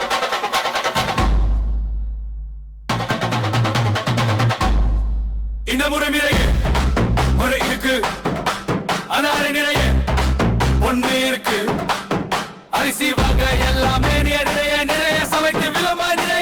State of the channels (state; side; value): identical; both; correlation 1.00